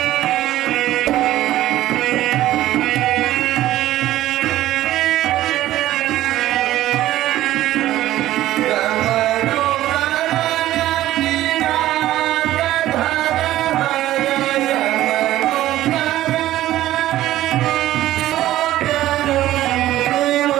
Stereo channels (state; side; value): quieter; left; 14.4 dB